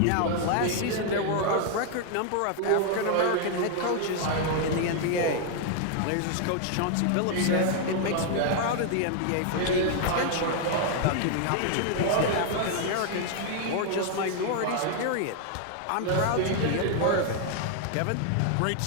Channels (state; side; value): different; both; correlation 0.00